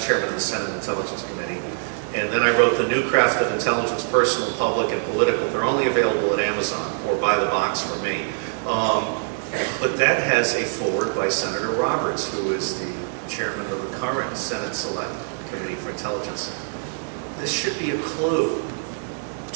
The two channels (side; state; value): left; silent; digital silence